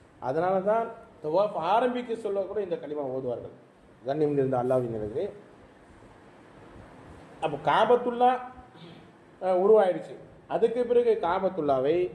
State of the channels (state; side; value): identical; both; correlation 1.00